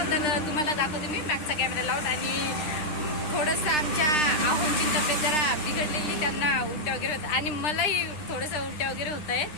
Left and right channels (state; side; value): late; right; 9.9 ms